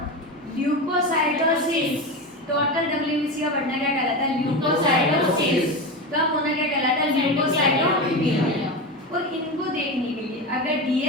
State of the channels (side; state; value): both; normal; correlation 0.20